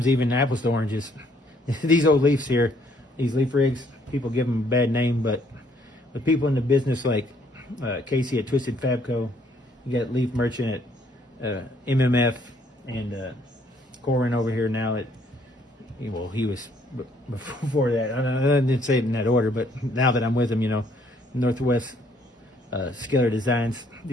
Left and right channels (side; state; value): both; normal; correlation 0.66